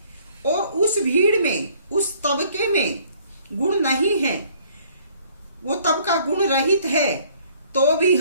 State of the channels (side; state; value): both; inverted; correlation -0.59